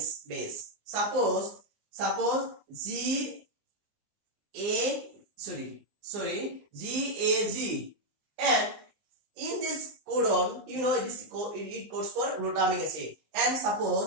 base. Suppose GAG, and in this codon, you know, it codes for glutamic acid, and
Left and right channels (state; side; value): late; left; 19 ms